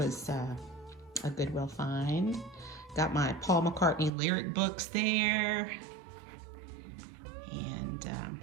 a Goodwill find. Got my Paul McCartney lyric books there. And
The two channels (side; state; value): left; drops out; at 4.1 s